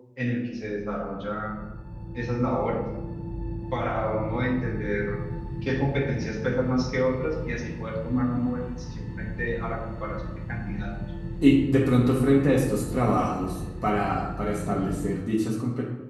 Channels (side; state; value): both; identical; correlation 1.00